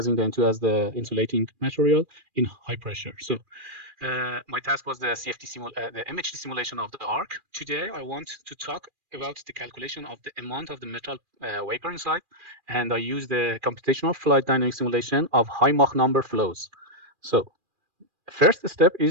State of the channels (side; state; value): left; late; 2.4 ms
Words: the N2 as the insulating material in high pressure. So my task was the the MHD simulation of the arc. Today, I want to talk about the calculation of the amount of the metal vapor inside, and I use the computational fluid dynamic simulation of high Mach number flows. So first step